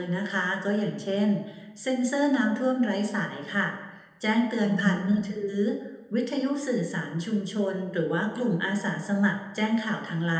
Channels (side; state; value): both; identical; correlation 1.00